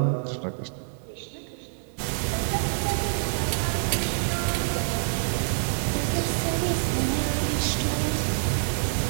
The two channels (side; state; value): left; silent; digital silence